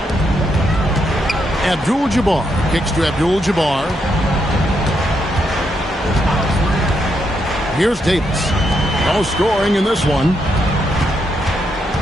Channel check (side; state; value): both; normal; correlation 0.79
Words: Abdul-Jabbar kicks to Abdul-Jabbar. Here's Davis. No scoring in this one.